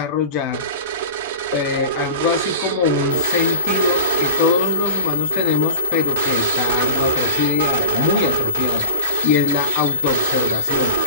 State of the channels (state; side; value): inverted; both; correlation -0.32